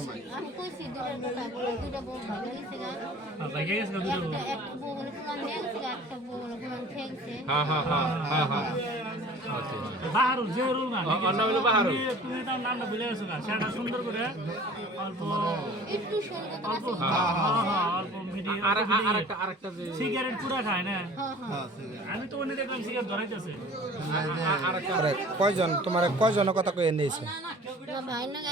নাই আমি কইছি দুইটা বউ ভালো হইছে গা ভাই গেছে দুইটা বউ একটা বউ বলে কোন নেছে একটা বউ বলে কোন ঠেকছে হ্যাঁ হ্যাঁ হ্যাঁ হ্যাঁ হ্যাঁ আচ্ছা বাহারুল যে রুল না অন্য হলো বাহারুল তুমি তার নামটা ভুলে গেছো না সেটা সুন্দর করে অল্প একটু সুন্দর অল্প হ্যাঁ অল্প মিডিয়াম আরেকটা যে সিগারেট পুরা খায় না হ্যাঁ আমি তো অন্য দেখলাম সিগারেট ধরাইতেছে আরে কয়জন তোমার কয়জনের কথা কয়ে নিয়েছে না ভাই না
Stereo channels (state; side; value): normal; both; correlation 0.46